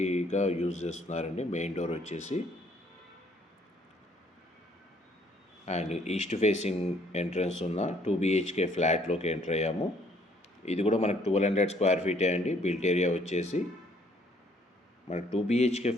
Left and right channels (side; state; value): both; normal; correlation 0.64